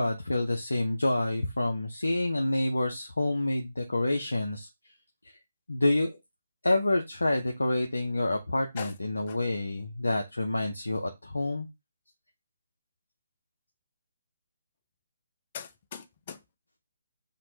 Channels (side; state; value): both; inverted; correlation -0.95